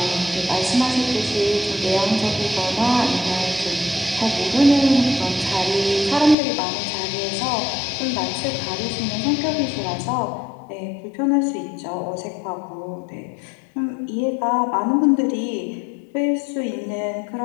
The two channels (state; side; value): drops out; right; at 6.4 s